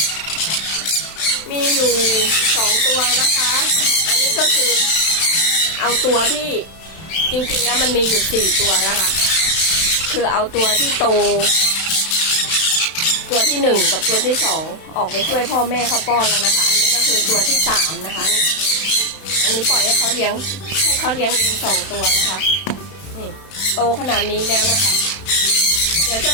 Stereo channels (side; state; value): right; late; 31 ms